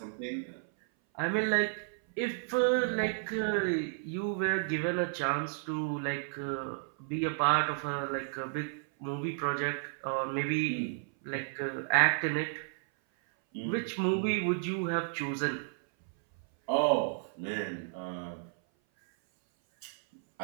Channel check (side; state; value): left; silent; 56 dB below the other